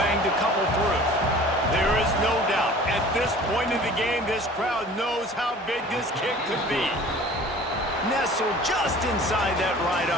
a couple through. There is no doubt, at this point in the game, this crowd knows how big this kick could be. Nestled just inside that right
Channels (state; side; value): normal; both; correlation 0.46